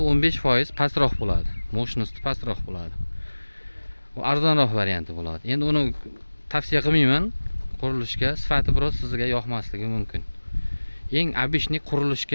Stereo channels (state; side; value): inverted; both; correlation -1.00